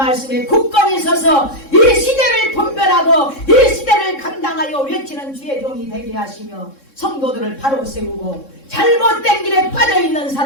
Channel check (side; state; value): right; late; 3.6 ms